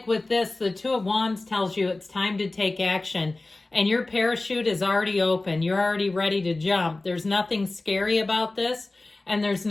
with this, the Two of Wands tells you it's time to take action. And your parachute is already open. You're already ready to jump. There's nothing scary about this. And there's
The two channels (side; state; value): right; quieter; 3.1 dB